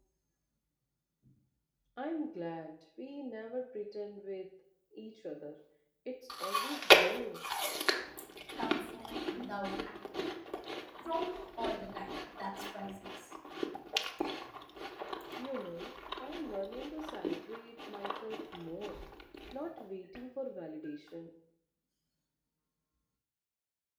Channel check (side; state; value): both; identical; correlation 1.00